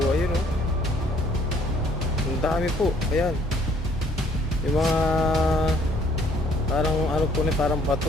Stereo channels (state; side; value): normal; both; correlation 0.62